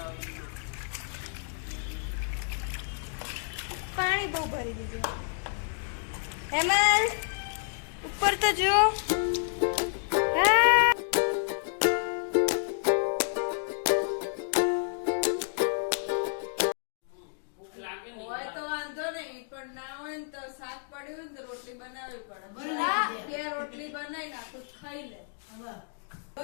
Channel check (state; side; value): silent; right; digital silence